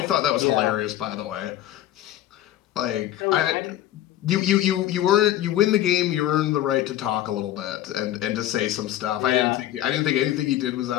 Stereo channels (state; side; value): quieter; right; 13.1 dB